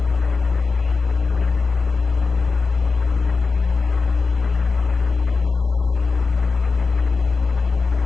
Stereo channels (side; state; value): right; quieter; 4.4 dB